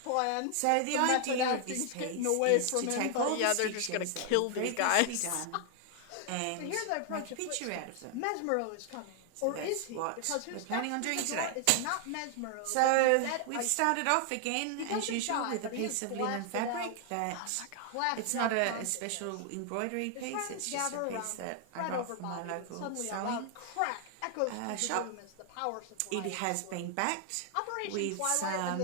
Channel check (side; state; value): both; different; correlation 0.00